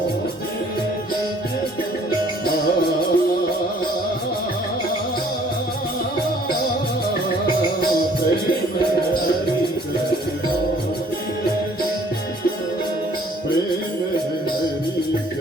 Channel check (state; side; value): normal; both; correlation 0.58